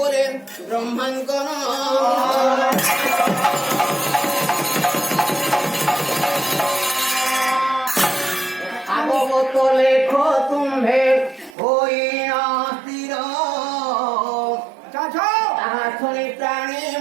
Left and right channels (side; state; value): left; drops out; at 11.6 s